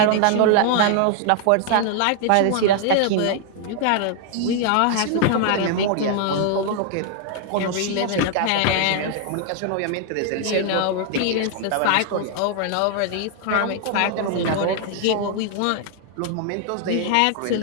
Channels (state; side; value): different; both; correlation 0.00